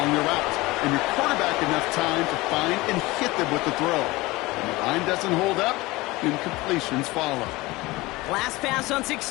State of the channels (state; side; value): quieter; right; 21.0 dB